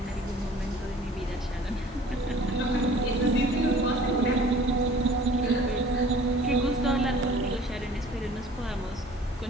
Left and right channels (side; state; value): both; normal; correlation 0.49